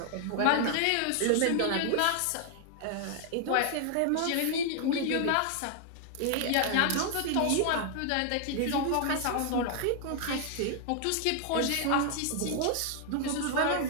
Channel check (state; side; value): different; both; correlation 0.00